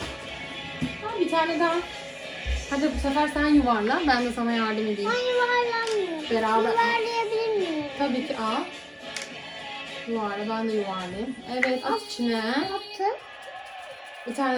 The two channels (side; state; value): both; identical; correlation 1.00